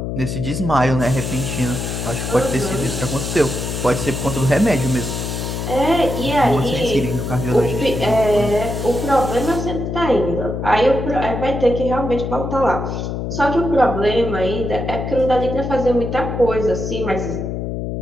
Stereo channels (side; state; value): left; noise; hum, 4 dB below the sound